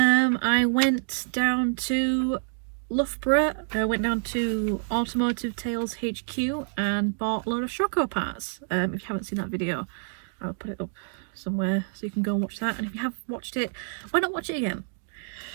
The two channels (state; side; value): silent; left; digital silence